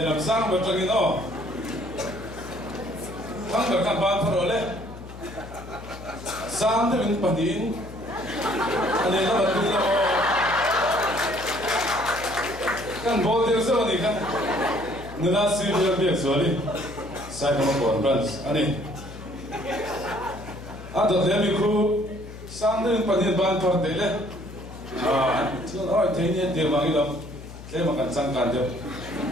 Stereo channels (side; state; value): left; noise; hum, 14 dB below the sound